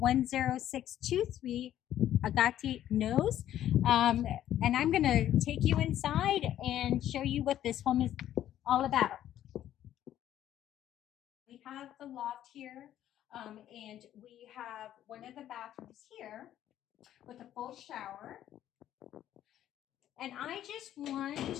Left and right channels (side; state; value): right; quieter; 11.8 dB